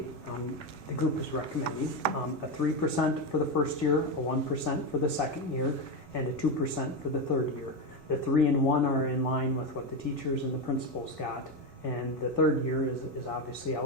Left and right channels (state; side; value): normal; both; correlation 0.12